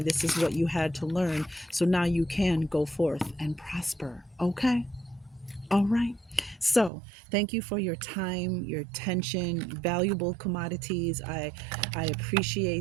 This is what you had to learn. So now you can go forth and prosper. Okay? All right. So, thank you for your time, your attention, valuable commodities. I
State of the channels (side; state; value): left; drops out; at 6.9 s